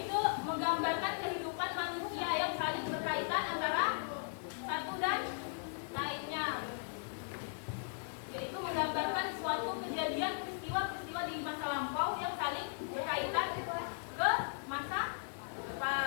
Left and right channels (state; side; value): silent; right; digital silence